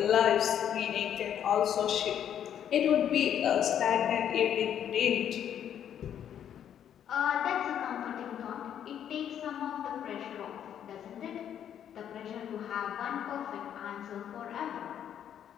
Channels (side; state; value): right; quieter; 9.6 dB